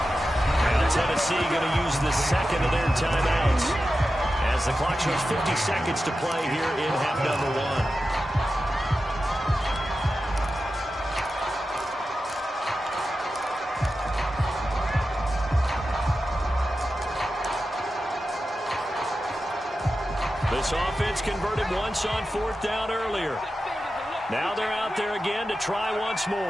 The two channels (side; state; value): both; normal; correlation 0.92